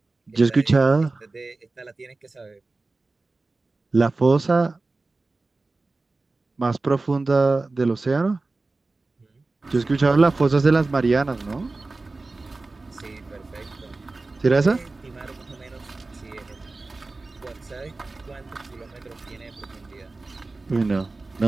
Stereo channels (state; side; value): quieter; left; 3.4 dB